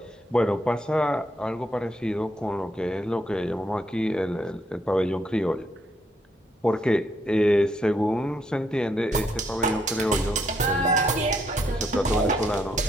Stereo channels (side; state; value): both; normal; correlation 0.75